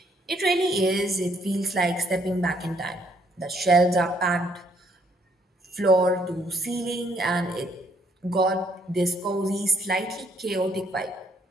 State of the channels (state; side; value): normal; both; correlation 0.68